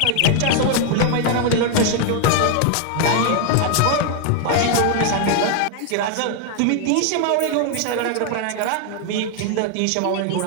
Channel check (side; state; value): both; different; correlation 0.00